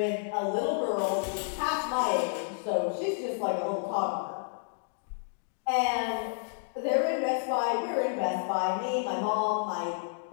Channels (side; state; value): right; silent; digital silence